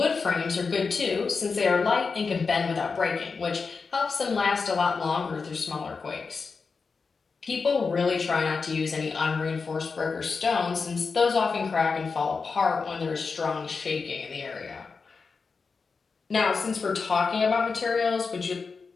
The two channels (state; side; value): quieter; right; 4.8 dB